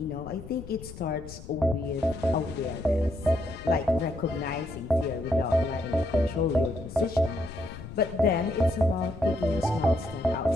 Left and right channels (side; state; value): left; noise; rumble, 14 dB below the sound